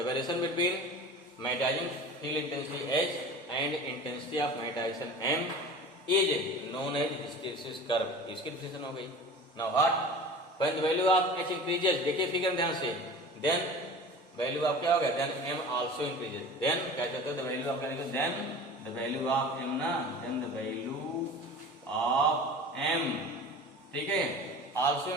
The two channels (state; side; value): normal; both; correlation 0.38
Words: variation between magnetizing field intensity H and intensity of magnetization M is known as hysteresis curve. इसकी डिफिनेशन हो गई। Now what? When the value of H increases, देखिए फिगर ध्यान से, देन वैल्यू ऑफ क्या हो गया? Then M also increases. Then क्या कहते हैं? द वैल्यू ऑफ क्या लिखो? Then the value of M ना, then the value of M, ठीक है, also